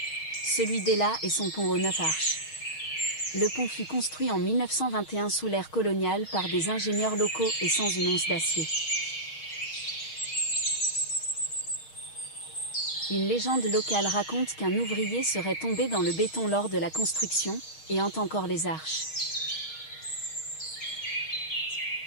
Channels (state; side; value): late; right; 6.4 ms